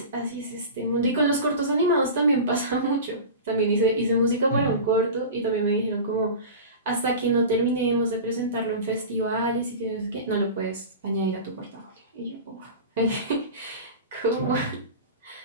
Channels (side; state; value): both; inverted; correlation -0.31